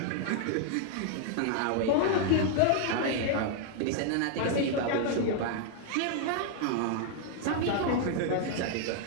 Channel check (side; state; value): both; different; correlation 0.00